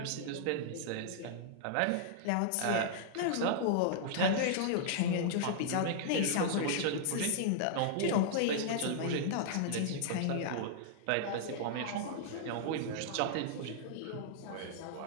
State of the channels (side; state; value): both; different; correlation -0.01